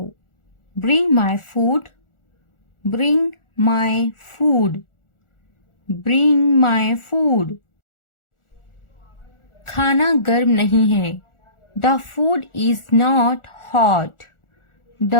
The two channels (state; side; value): late; right; 1.4 ms